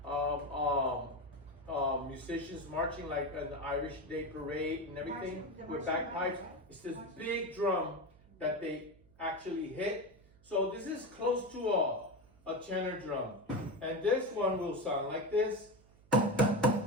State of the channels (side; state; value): right; noise; hum, 27 dB below the sound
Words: musicians marching like an Irish Day parade and everything with bagpipes. It's this big drum that they actually hit. So this is close to a tenor drum. And this one will sound like this.